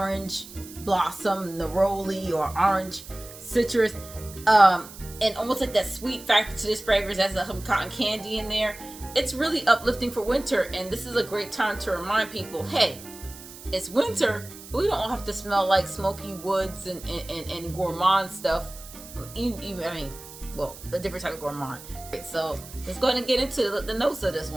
blossom neroli or orange citrus, and almost like that sweet factor to this fragrance. Has some cotton candy in there. It's really uplifting for winter, and this is a great time to remind people, hey, it's winter, but we don't have to smell like smoky woods and gourmand stuff. A different type of gourmand. Right, so let's go ahead and get into the notes of this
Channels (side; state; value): right; noise; hiss, 16 dB below the sound